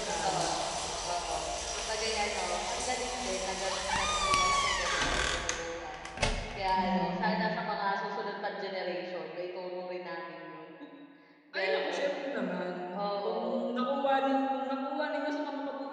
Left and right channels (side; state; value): both; identical; correlation 1.00